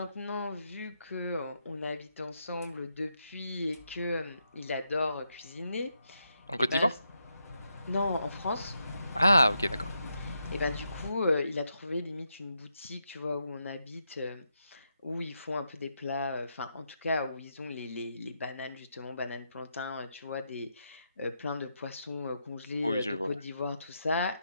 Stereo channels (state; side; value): inverted; both; correlation -0.82